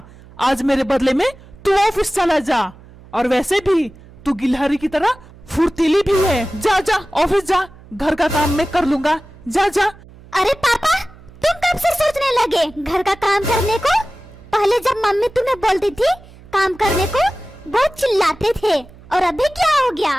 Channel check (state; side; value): noise; right; hum, 22 dB below the sound